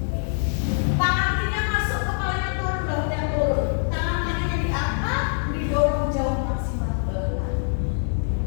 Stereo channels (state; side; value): silent; right; 62 dB below the other